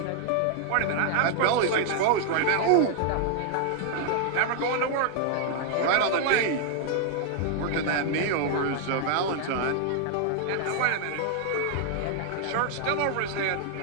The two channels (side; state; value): both; different; correlation 0.00